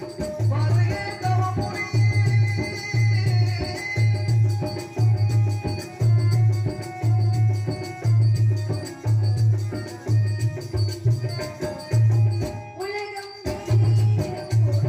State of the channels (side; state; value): both; identical; correlation 1.00